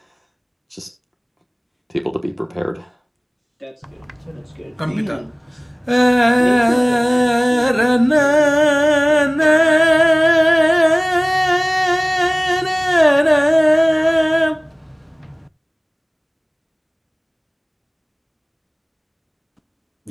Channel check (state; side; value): identical; both; correlation 1.00